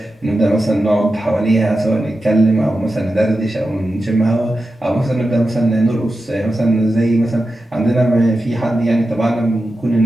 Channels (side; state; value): both; normal; correlation 0.91